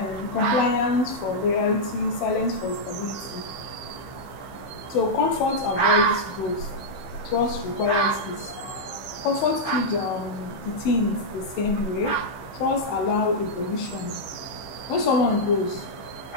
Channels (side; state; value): right; late; 15 ms